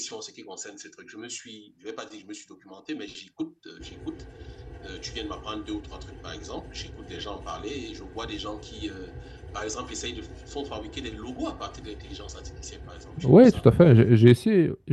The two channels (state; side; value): identical; both; correlation 1.00